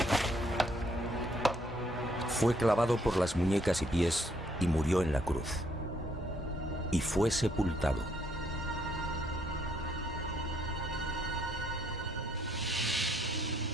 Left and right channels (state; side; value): normal; both; correlation 0.69